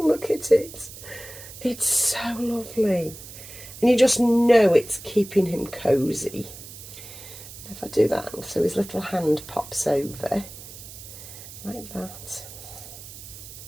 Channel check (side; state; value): right; noise; hiss, 15 dB below the sound